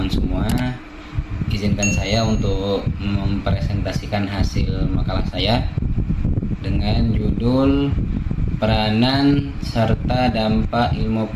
semua. Izinkan saya untuk mempresentasikan hasil makalah saya dengan judul Peranan serta Dampak Ilmu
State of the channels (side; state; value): both; identical; correlation 1.00